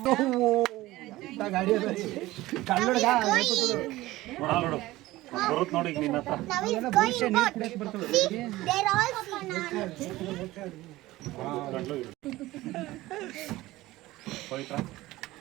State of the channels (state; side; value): quieter; left; 17.7 dB